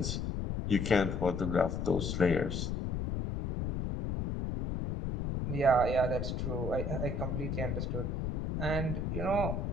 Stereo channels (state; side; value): noise; left; rumble, 2 dB below the sound